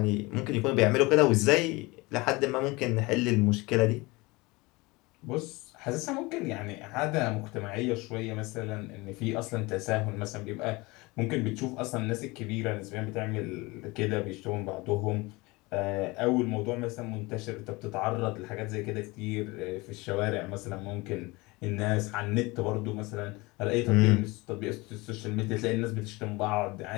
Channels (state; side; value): quieter; right; 23.7 dB